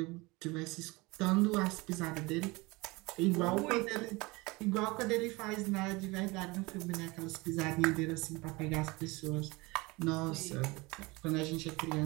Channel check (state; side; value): quieter; left; 24.0 dB